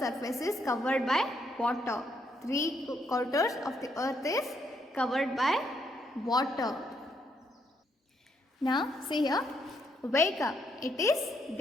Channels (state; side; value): normal; both; correlation 0.75